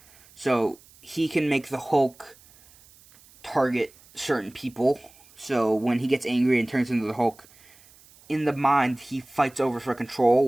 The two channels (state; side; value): noise; right; hiss, 26 dB below the sound